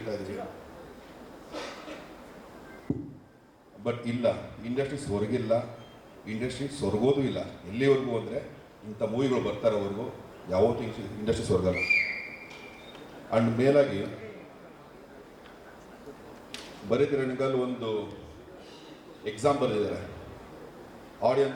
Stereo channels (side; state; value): both; identical; correlation 1.00